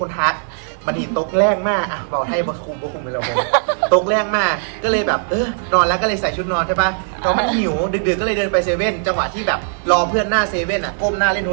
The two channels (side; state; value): left; silent; 67 dB below the other